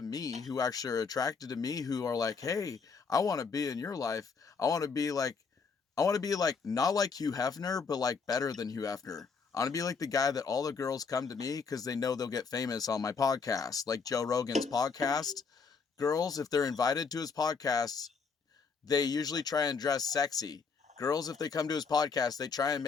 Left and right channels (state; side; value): quieter; right; 5.3 dB